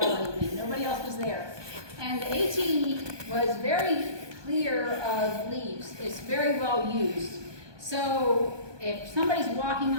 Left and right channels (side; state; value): left; late; 1.2 ms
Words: one evening. Nobody else was there. And the AT was very clear of leaves. It's very well used. So if somebody's walking